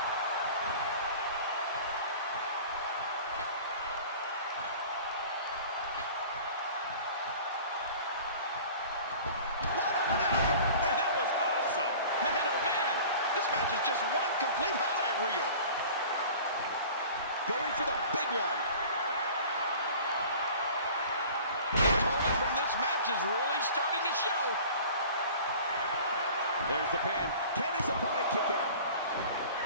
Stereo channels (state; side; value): inverted; both; correlation -0.43